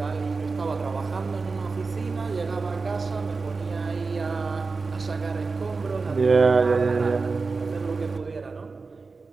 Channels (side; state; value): left; quieter; 4.2 dB